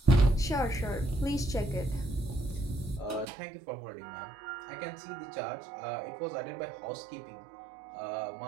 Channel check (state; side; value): drops out; left; at 3.2 s